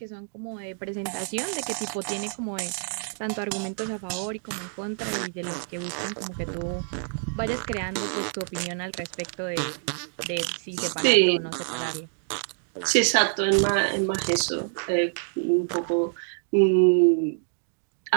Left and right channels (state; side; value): silent; left; 60 dB below the other